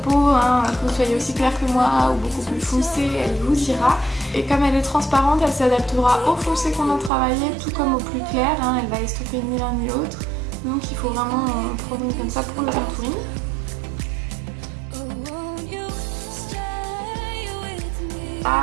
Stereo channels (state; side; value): drops out; left; at 7.1 s